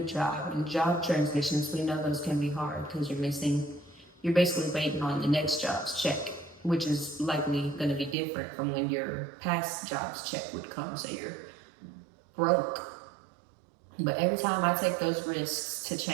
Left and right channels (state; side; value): drops out; left; at 8.2 s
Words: job and job transitions, we know those can be hard because you're basically waiting on the next job's check, which is likely going to be different from when your past job's check would come, so you're broke. But every time I take those risks to